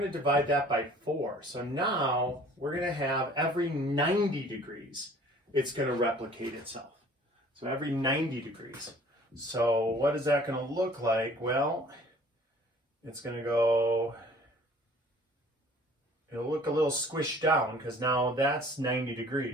to divide that by 4. So now we're going to have every 90 degrees, it's going to replicate itself. So every 90 degrees. So what is that going to look like? Well, it's going to go, it'll look a little squished down because now that's 90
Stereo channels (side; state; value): both; normal; correlation 0.52